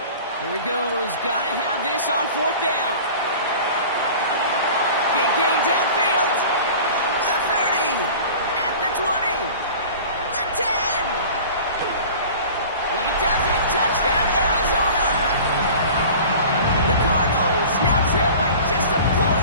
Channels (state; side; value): inverted; both; correlation -0.41